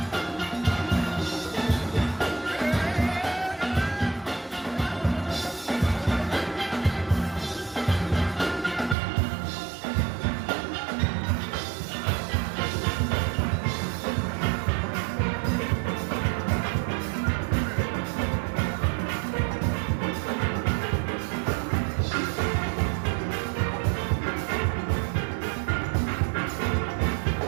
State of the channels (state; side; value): drops out; left; at 9.0 s